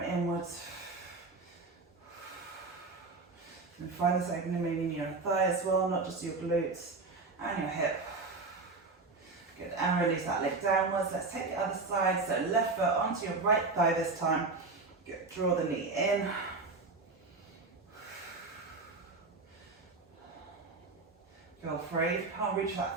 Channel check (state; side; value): quieter; left; 3.8 dB